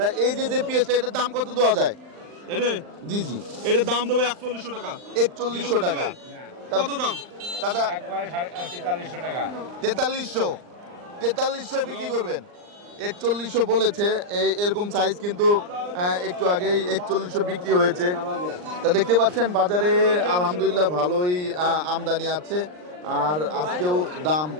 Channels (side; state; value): left; late; 39 ms